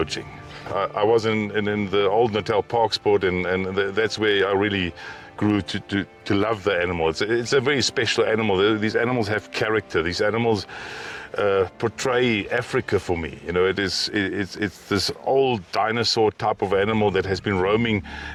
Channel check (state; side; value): identical; both; correlation 1.00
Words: I was in the old Natal Park Sport, and that's where I really grew to love the animal. It's a very special animal. These animals have character. These animals portray Africa for me. It's this old dinosaur type of animal that has been roaming